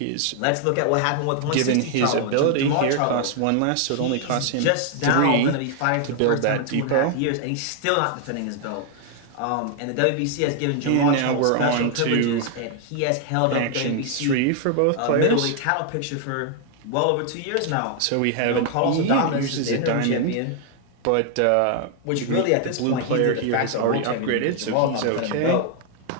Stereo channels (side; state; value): both; different; correlation 0.00